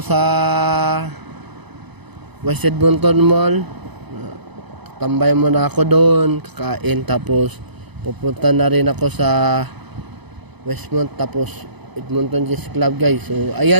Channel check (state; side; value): late; left; 0.99 ms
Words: West Edmonton Mall. Tambay muna ako doon, kakain. Tapos, pupunta na rin ako sa Westmont, tapos Edmonton Chess Club guys. So